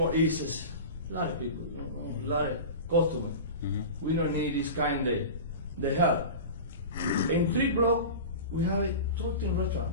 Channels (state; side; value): inverted; both; correlation -0.31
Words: East is a lot of people, a lot of customer. Mhm. We don't need this kind of the help. In 3 block, we have a 13 restaurant.